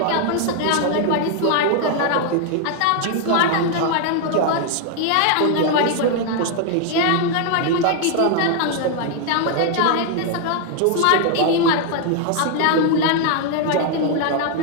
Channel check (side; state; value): both; different; correlation 0.00